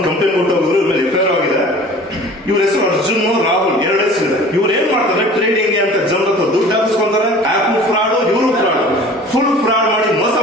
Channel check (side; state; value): both; normal; correlation 0.44